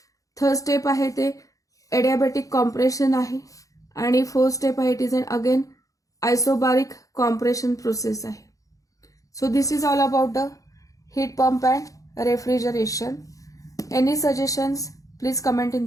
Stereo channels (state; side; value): late; right; 0.16 ms